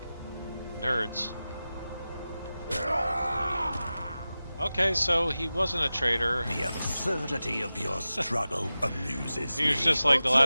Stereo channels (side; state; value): both; inverted; correlation -0.95